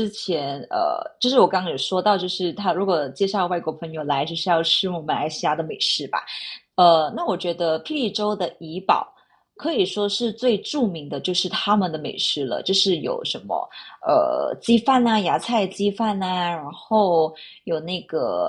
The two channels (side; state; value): both; identical; correlation 1.00